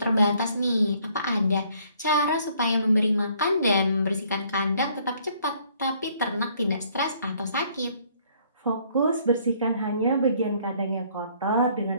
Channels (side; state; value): both; inverted; correlation -0.63